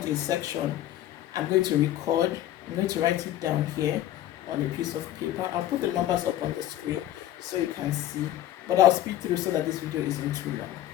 a section, I'm going to record. I'm going to write it down here on a piece of paper. I'll put the numbers up on the screen so you can see. But I'll speed through so that this video isn't too long.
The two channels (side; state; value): right; quieter; 13.0 dB